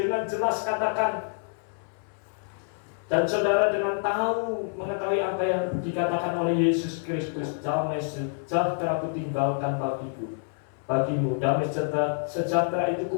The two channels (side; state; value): right; silent; 60 dB below the other